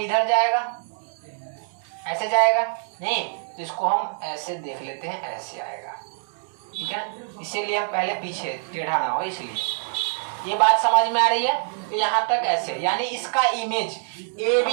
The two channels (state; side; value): silent; left; digital silence